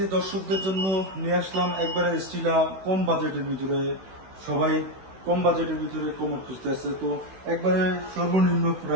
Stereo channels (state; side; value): late; left; 16 ms